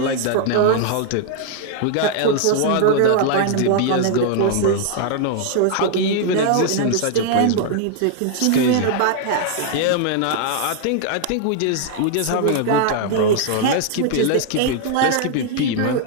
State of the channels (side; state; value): both; different; correlation 0.00